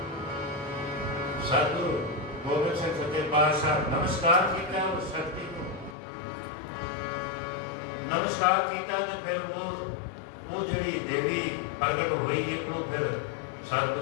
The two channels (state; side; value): drops out; right; at 6.0 s